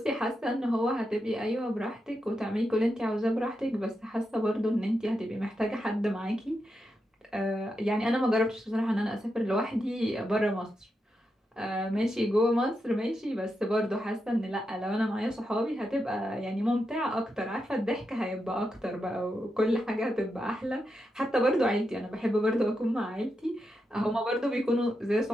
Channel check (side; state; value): both; normal; correlation 0.86